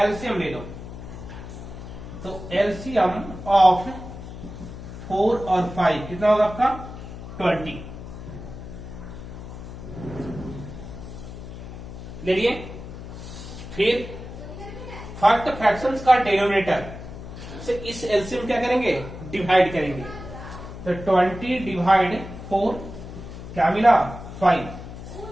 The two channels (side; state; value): left; noise; hum, 12 dB below the sound